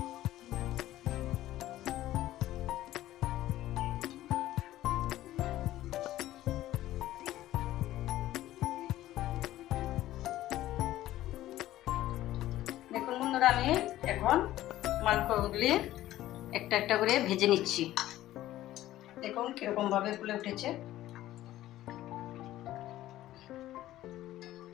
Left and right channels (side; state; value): right; quieter; 14.5 dB